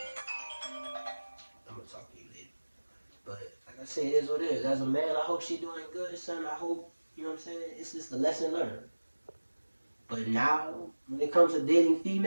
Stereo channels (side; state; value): both; inverted; correlation -1.00